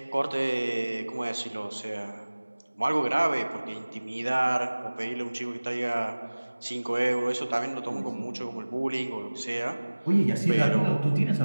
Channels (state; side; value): inverted; both; correlation -1.00